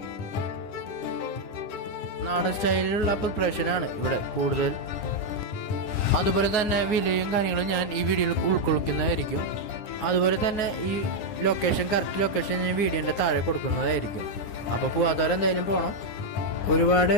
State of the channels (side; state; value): right; late; 9.8 ms